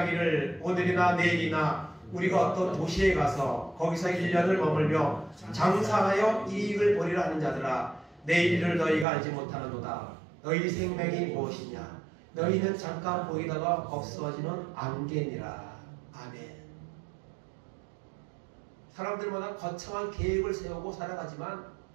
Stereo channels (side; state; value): left; drops out; at 9.1 s